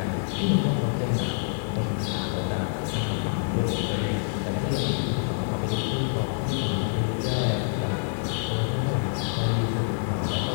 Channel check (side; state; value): right; silent; digital silence